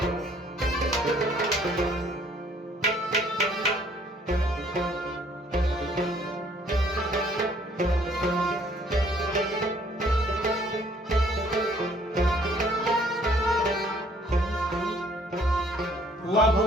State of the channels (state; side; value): normal; both; correlation 0.61